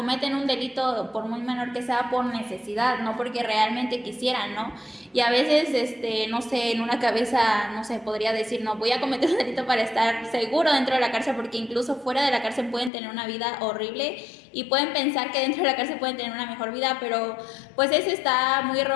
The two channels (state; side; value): drops out; right; at 12.9 s